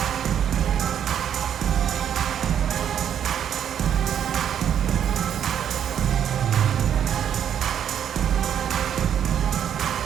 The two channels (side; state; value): left; quieter; 9.2 dB